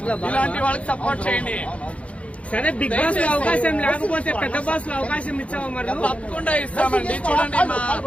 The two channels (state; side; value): late; right; 0.063 ms